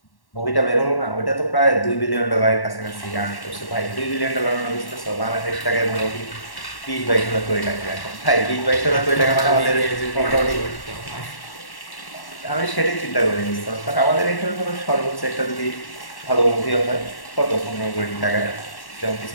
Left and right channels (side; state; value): right; late; 1.1 ms